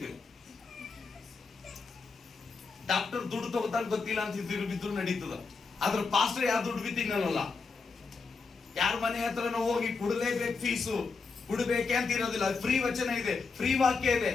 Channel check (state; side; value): quieter; right; 4.6 dB